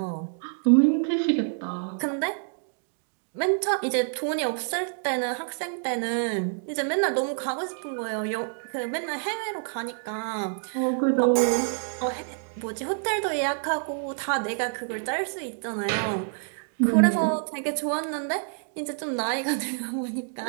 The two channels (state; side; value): silent; left; digital silence